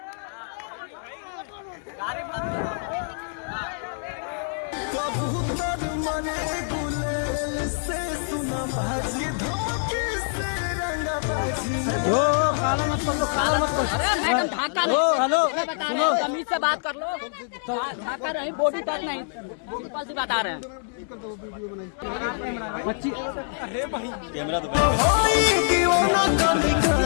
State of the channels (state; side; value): silent; right; digital silence